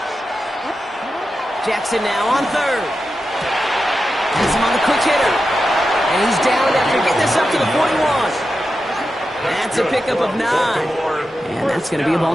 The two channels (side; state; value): both; normal; correlation 0.90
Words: Jackson now on third. Has him on the quick hitter. And he's down after getting this up to the 41. That's a pickup of 9. And that's going to be a